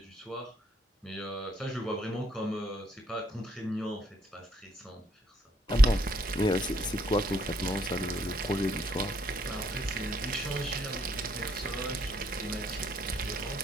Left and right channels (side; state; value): both; normal; correlation 0.69